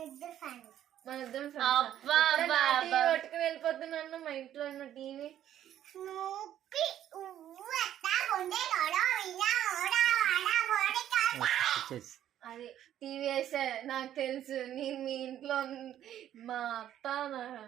మన ఇద్దరం పట్టుకుని వెళ్ళిపోతున్నాను. మా ఇంట్లో ఉన్న టీవీ అది టీవీ వేసే నాకు తెలుసు. నేను మీ ఇంట్లో మా అత్త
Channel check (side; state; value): left; quieter; 11.3 dB